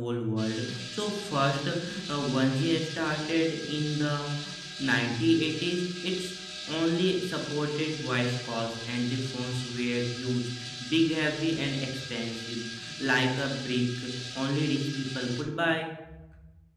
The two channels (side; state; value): both; identical; correlation 1.00